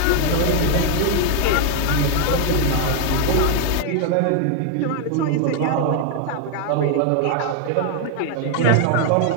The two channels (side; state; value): both; different; correlation 0.00